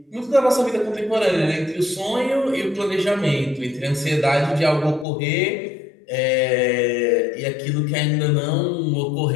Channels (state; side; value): drops out; right; at 5.1 s